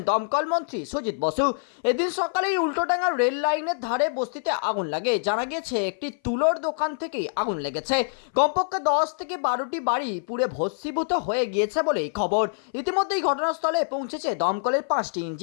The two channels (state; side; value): silent; right; 58 dB below the other